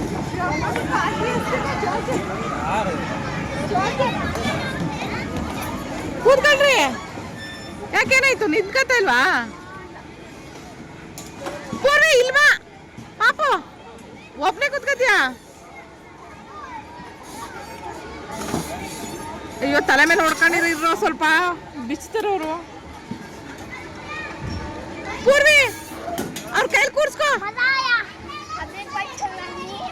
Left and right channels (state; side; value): identical; both; correlation 1.00